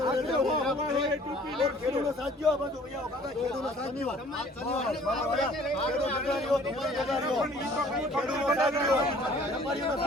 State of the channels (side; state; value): both; normal; correlation 0.53